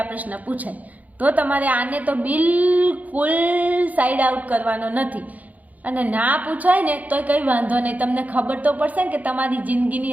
પ્રશ્ન પૂછાય. તો તમારે આને તો બિલકુલ સાઈડ આઉટ કરવાનો નથી. અને ના પૂછાય ને તો કંઈ વાંધો નહીં. તમને ખબર તો પડશે ને કે તમારી જિંદગીની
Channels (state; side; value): late; left; 0.076 ms